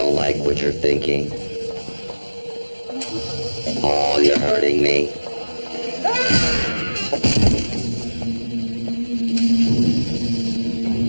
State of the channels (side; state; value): both; inverted; correlation -1.00